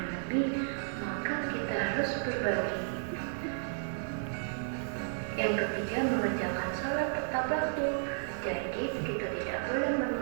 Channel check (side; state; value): left; silent; 56 dB below the other